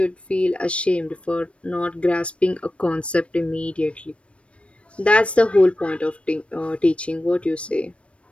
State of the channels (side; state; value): right; late; 0.061 ms